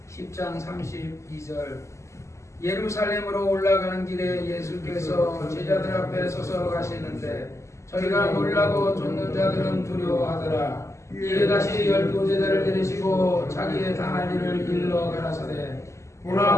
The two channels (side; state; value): right; late; 0.14 ms